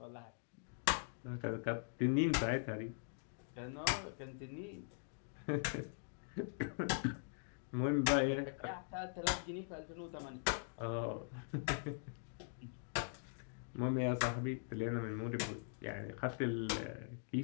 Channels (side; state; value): right; silent; digital silence